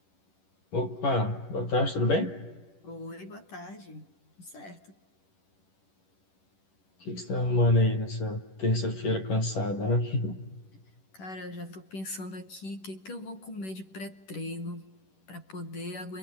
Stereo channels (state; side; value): late; right; 11 ms